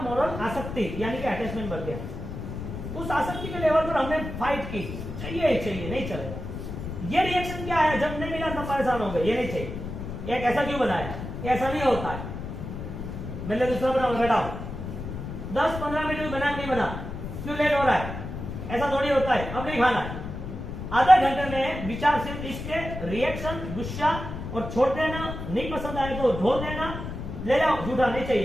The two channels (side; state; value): left; noise; rumble, 7 dB below the sound